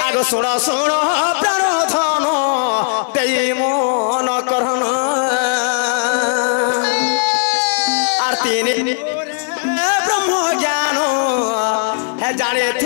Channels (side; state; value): right; silent; 68 dB below the other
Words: आगो सुनो सुनो प्राण धन देई मन करन आरती ब्रह्म ज्ञान है जाने